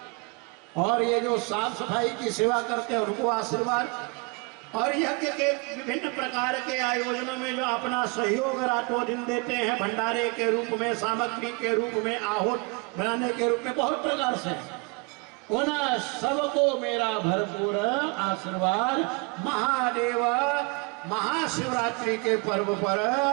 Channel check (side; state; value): left; quieter; 30.7 dB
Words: और ये जो साफ सफाई की सेवा करते हैं उनको आशीर्वाद, और यज्ञ के विभिन्न प्रकार के आयोजनों में जो अपना सहयोग रातों दिन देते हैं, भंडारे के रूप में, सामग्री के रूप में, आहूत बनाने के रूप में, बहुत प्रकार से, उन सबको मेरा भरपूर आशीर्वाद। महादेव महाशिवरात्रि के पर्व पर